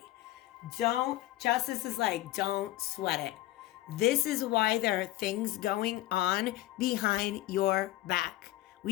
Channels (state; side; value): quieter; right; 16.0 dB